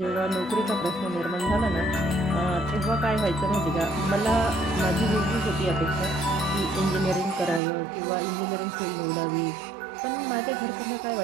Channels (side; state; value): left; drops out; at 7.6 s